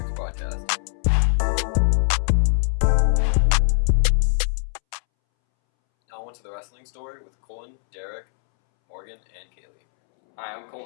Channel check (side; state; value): right; silent; 64 dB below the other